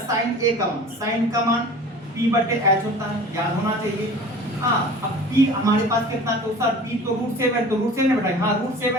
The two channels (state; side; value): normal; both; correlation 0.41